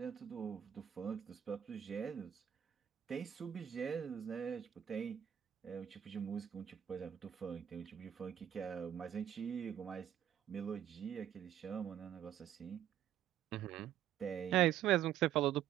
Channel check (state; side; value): quieter; left; 10.2 dB